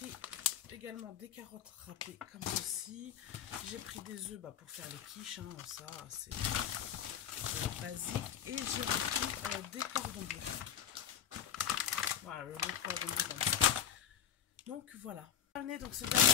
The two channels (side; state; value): right; quieter; 9.4 dB